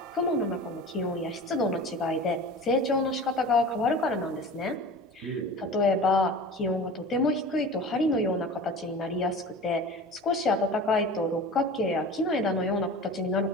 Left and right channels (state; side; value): normal; both; correlation 0.36